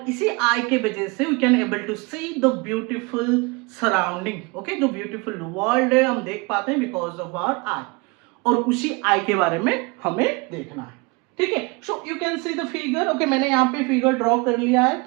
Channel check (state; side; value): quieter; left; 27.7 dB